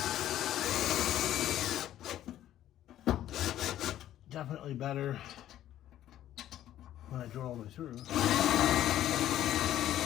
Definitely better when I drill all the way through.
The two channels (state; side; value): quieter; right; 12.5 dB